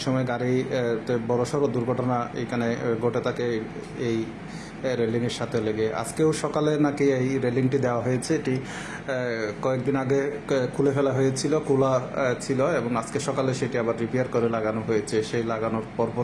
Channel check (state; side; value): identical; both; correlation 1.00